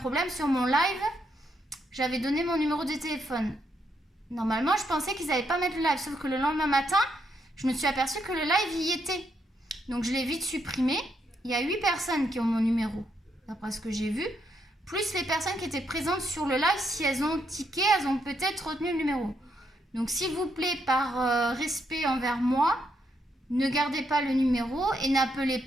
sur mon live. J'avais donné mon numéro de téléphone. Normalement, je pensais qu'ils n'allaient pas mettre le live, sauf que le lendemain matin, je me suis aperçue que le live y était. Donc, je l'ai vite supprimé. Il y a 8 personnes qui ont mon numéro, d'après ce que j'ai vu. Plus les personnes qui étaient présentes sur le live, si elles ont tiqué, elles ont peut-être retenu le numéro. Donc, s'il vous plaît, par respect envers moi, ne gardez pas le numéro et n'appelez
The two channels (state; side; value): normal; both; correlation 0.78